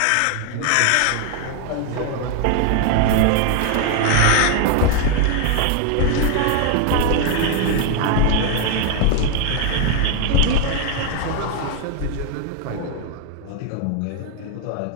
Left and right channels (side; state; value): both; different; correlation 0.00